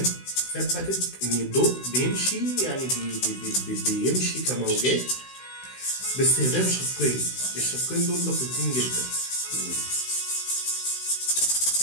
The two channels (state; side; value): late; right; 16 ms